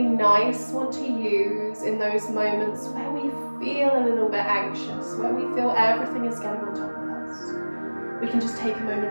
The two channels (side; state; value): both; inverted; correlation -1.00